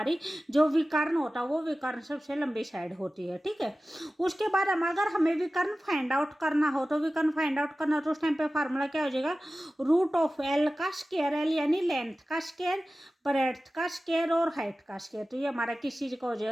जो विकर्ण होता है वो विकर्ण सबसे लंबी साइड होती है। ठीक है, उसके बाद हम अगर हमें विकर्ण फाइंड आउट करना हो तो विकर्ण फाइंड आउट करना तो उस टाइम पे फार्मूला क्या हो जाएगा, रूट ऑफ एल का स्क्वायर, एल यानी लेंथ का स्क्वायर, ब्रेड्थ का स्क्वायर और हाइट का स्क्वायर। तो ये हमारा किस चीज का हो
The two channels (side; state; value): both; normal; correlation 0.96